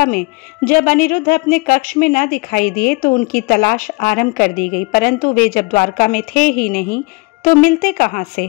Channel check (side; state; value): right; quieter; 27.3 dB